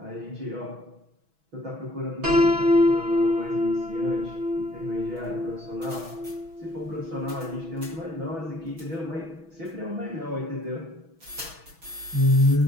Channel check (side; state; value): left; late; 6.2 ms